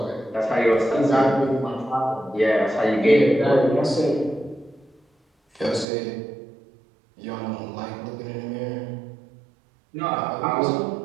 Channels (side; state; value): left; drops out; at 5.9 s